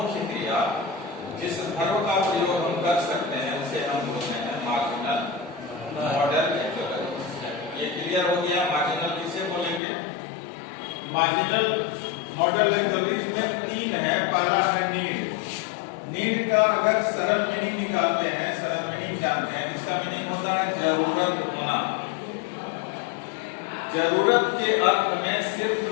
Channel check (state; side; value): drops out; right; at 9.8 s